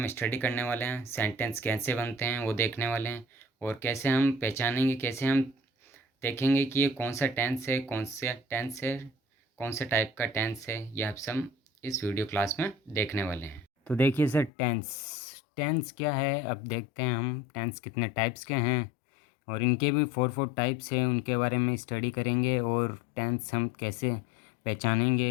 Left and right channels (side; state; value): right; drops out; at 14.5 s